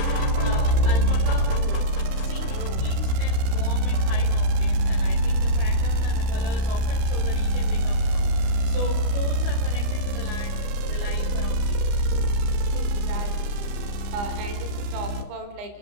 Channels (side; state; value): left; late; 29 ms